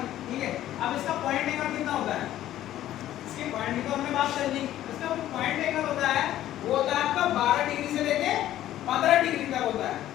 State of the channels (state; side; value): quieter; right; 13.0 dB